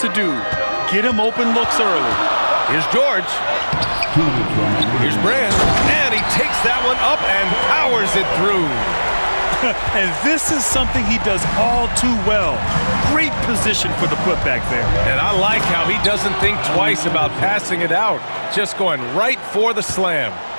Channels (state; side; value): inverted; both; correlation -1.00